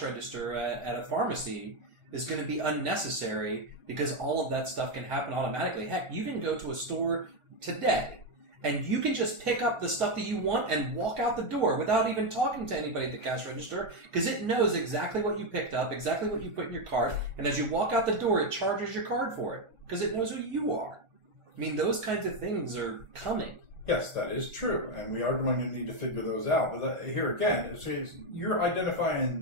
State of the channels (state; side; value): late; left; 1.4 ms